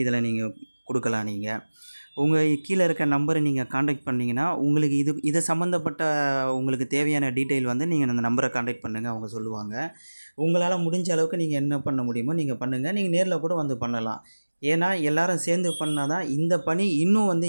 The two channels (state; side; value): inverted; both; correlation -1.00